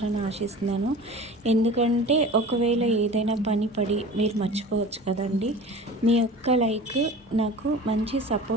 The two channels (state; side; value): normal; both; correlation 0.37